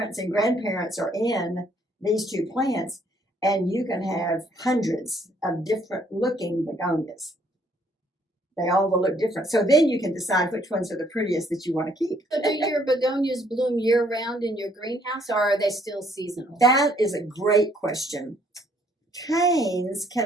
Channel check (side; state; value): both; normal; correlation 0.66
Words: and grandparents are in these 2 plants, and you can have hundreds of different looking begonias. They all will look different. So then you can decide which ones are the prettiest that you want to keep. So do your begonias bloom year-round in your greenhouse, or are they still seasonal? That is a great question. Canes